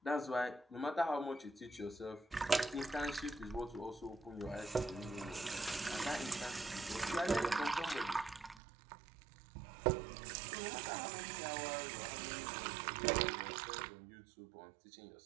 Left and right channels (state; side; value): drops out; left; at 8.6 s